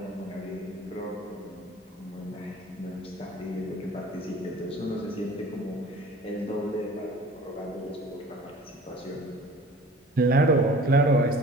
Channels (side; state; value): both; normal; correlation 0.45